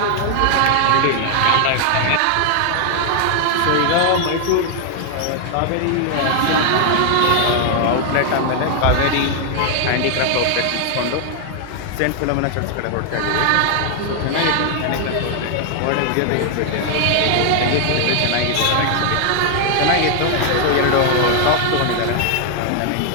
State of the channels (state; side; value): different; both; correlation 0.00